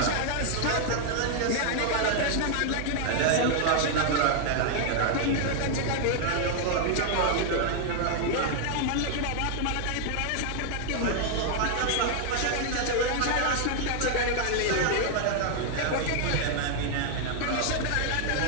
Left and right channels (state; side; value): different; both; correlation 0.00